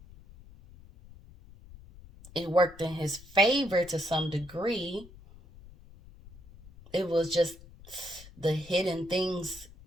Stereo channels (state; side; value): noise; left; rumble, 20 dB below the sound